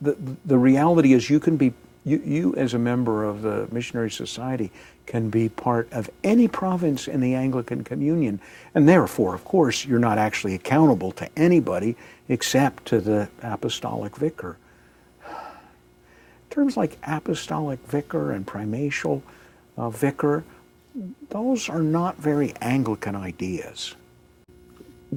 reality is you as a member of the Missionary Society can be part of any province in the Anglican Communion, and therefore, of course, you're not actually accountable to anybody except to the apostolic vicar. Terms like apostolic vicar and primatial vicar, those are not very Anglican ideas.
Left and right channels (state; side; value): identical; both; correlation 1.00